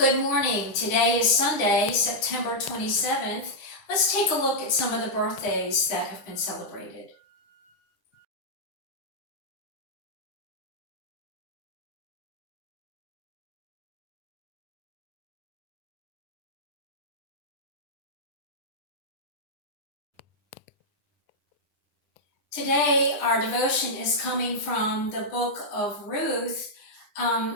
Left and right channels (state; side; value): late; right; 10 ms